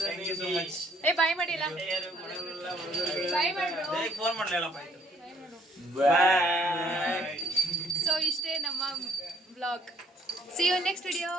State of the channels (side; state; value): both; normal; correlation 0.65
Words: you so much ಏ ಬಾಯ್ ಮಾಡಿ ಎಲ್ಲ. ಬಾಯ್ ಮಾಡು. ಫೋನ್ ಮಾಡ್ಲಿಲ್ಲಪ್ಪ ಆಯ್ತು ಬಾಯ್. ಸೊ ಇಷ್ಟೇ ನಮ್ಮ vlog. See you next video.